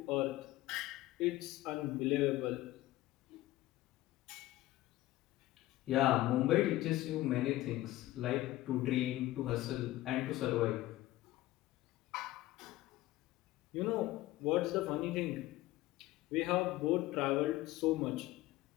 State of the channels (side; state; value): right; quieter; 16.6 dB